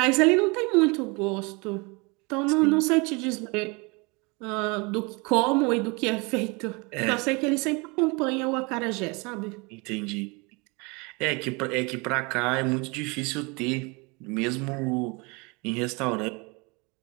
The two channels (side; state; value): left; quieter; 28.6 dB